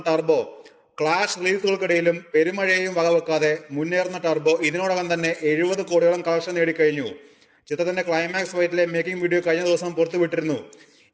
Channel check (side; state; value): both; identical; correlation 1.00